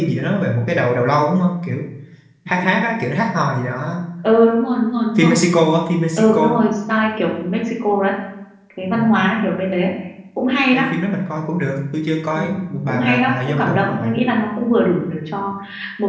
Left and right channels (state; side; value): identical; both; correlation 1.00